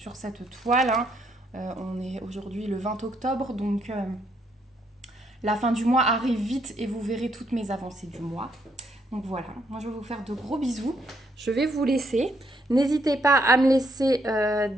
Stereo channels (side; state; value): both; normal; correlation 0.73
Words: cette toile. Hein. On est aujourd'hui le 20 octobre, donc la fin du mois arrive vite et vous verrez toutes mes avancées du mois. Donc voilà, moi je vais vous faire de gros bisous. Je vais vous laisser. N'hésitez pas à me laisser